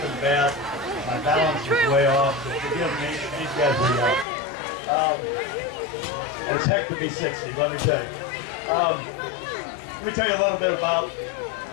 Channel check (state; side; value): drops out; right; at 4.2 s